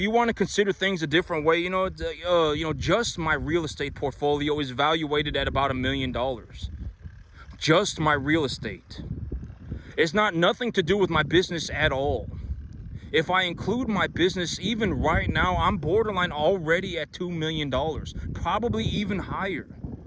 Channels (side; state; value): both; identical; correlation 1.00